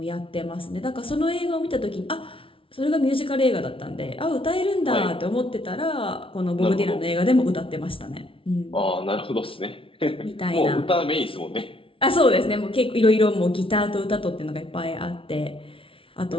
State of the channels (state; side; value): late; right; 0.26 ms